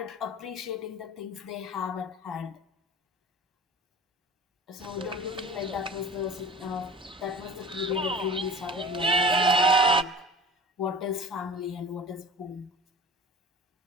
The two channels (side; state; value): both; normal; correlation 0.40